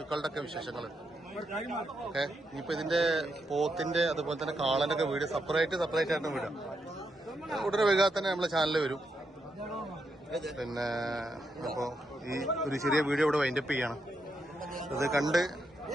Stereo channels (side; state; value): both; normal; correlation 0.82